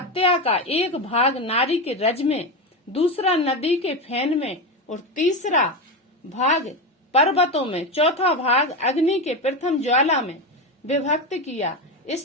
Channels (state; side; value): normal; both; correlation 0.16